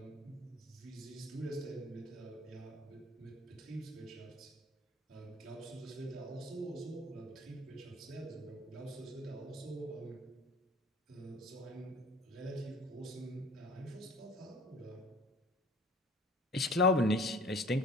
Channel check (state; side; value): normal; both; correlation 0.48